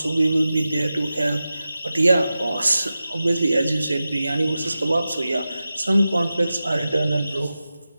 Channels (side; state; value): both; inverted; correlation -0.93